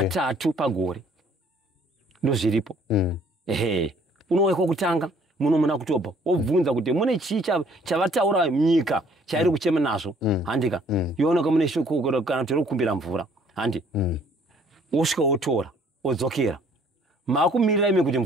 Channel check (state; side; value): normal; both; correlation 0.59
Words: pagore ndo zviripo. Unouya kwokutanga muno muna October obvunza kuti mune chii chavataura nyika chairi kuchema nazvo handika yooneka mune shoko kana kuti rokukumbira mvura handi osvika otora odzokera makumirira ime kuti